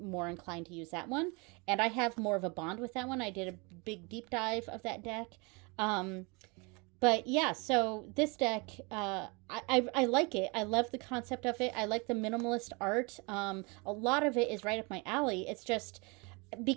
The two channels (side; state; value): left; quieter; 29.2 dB